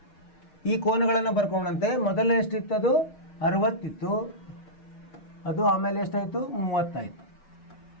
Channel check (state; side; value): late; right; 6.1 ms